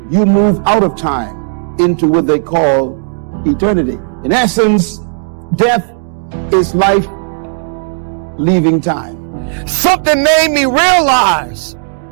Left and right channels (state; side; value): silent; left; digital silence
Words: you move out of time into what they call eternity. In essence, death is life leaving time. Something made me realize